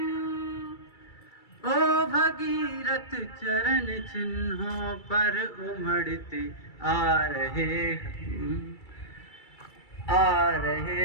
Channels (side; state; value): right; late; 2.3 ms